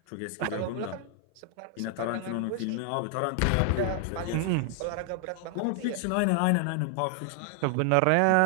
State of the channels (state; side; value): different; both; correlation 0.00